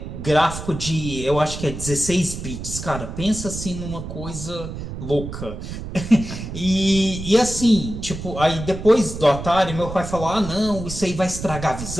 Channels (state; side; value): noise; right; rumble, 8 dB below the sound